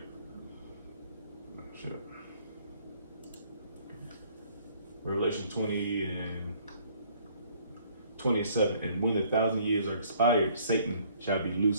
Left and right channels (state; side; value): inverted; both; correlation -0.60